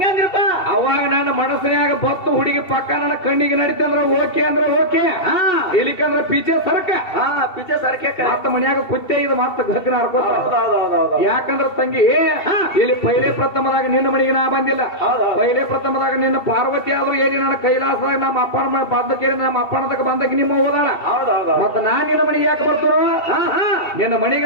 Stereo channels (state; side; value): late; right; 2.7 ms